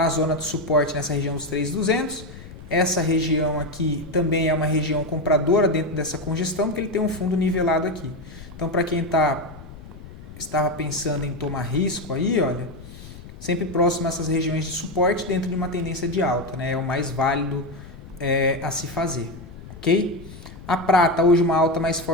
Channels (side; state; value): left; noise; rumble, 16 dB below the sound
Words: A zona de suporte nessa região dos 3.200. Essa região aqui também é uma região compradora dentro dessa congestão, porque ele tem um fundo nivelado aqui. Então, para quem estava pensando em tomar risco aí, olha, sempre próximo a essas regiões de suporte dentro de uma tendência de alta, né? É o mais válido a se fazer, ok? A prata hoje uma alta mais